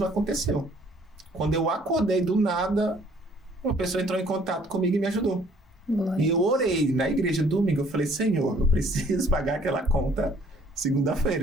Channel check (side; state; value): both; normal; correlation 0.60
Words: aconteceu. Quando eu acordei do nada, uma pessoa entrou em contato comigo e me ajudou. Glória. E eu orei na igreja domingo. Eu falei, Senhor, eu preciso pagar aquela conta